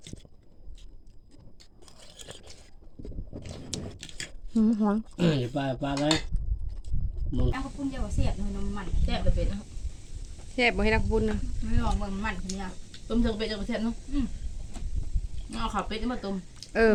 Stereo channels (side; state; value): both; identical; correlation 1.00